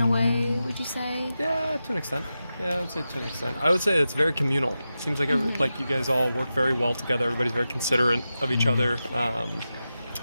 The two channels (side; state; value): both; inverted; correlation -0.91